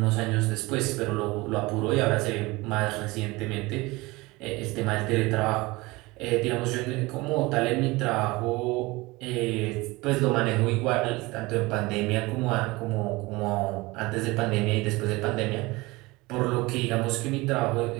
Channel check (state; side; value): quieter; left; 22.3 dB